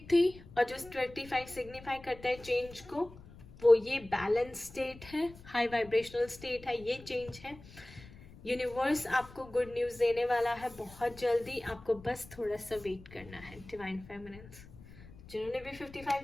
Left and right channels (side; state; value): left; noise; rumble, 19 dB below the sound